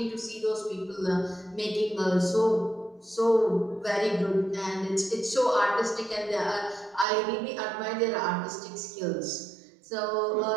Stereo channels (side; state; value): left; drops out; at 7.1 s